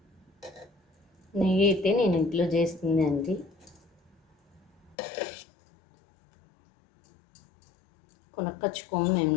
నెయ్యి అయితే నేను ఇంట్లో చేస్తుంది అండి. కొనుక్కొచ్చుకోము మేము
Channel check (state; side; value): drops out; right; at 5.0 s